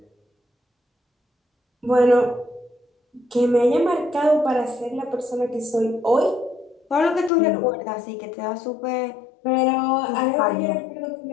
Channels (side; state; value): right; drops out; at 7.3 s